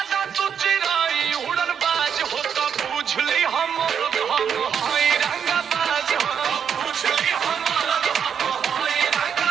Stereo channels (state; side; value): quieter; left; 7.7 dB